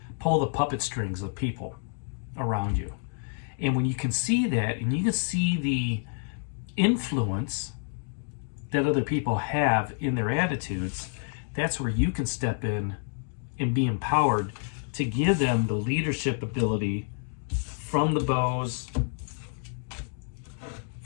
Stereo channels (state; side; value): silent; right; 59 dB below the other